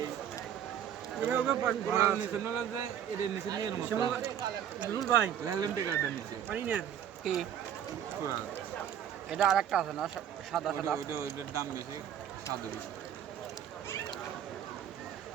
কি এটা আরেকটা আছে না সাদা সাদা ওইটার দাম বেশি, স্বাদ বেশি।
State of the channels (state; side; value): quieter; left; 9.6 dB